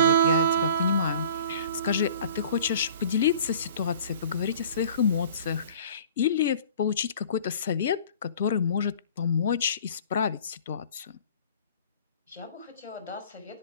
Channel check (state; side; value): inverted; both; correlation -0.47